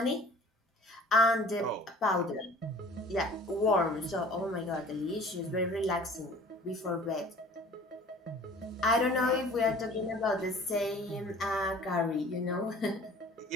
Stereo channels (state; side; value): normal; both; correlation 0.48